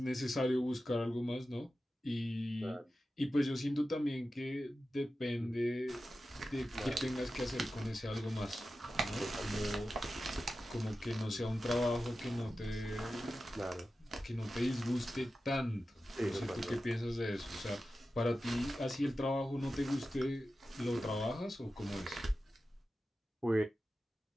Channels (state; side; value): normal; both; correlation 0.93